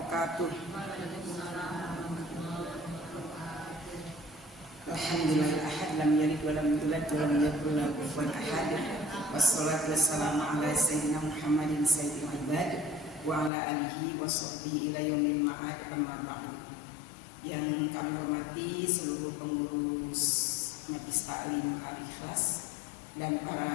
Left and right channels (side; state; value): right; drops out; at 13.5 s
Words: Alhamdulillah ahad lam yalid wa lam yulad wa lam yakul lahu kufuwan ahad. Wassalatu wassalamu ala sayyidina Muhammadin sayyidil ibad wa ala alihi wa sahbihi ila yaumil ma'ad, amma ba'du. Yang kami hormati seluruh pengurus Majelis Taklim Al-Ikhlas dan